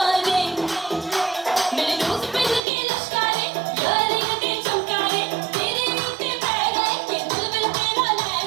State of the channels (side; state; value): left; drops out; at 2.6 s